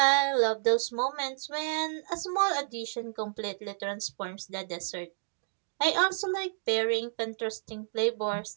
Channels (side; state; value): left; silent; digital silence